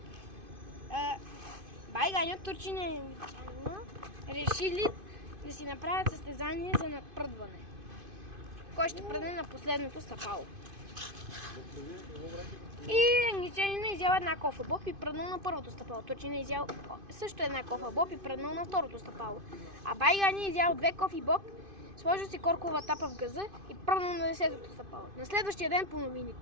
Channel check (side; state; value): left; late; 2.5 ms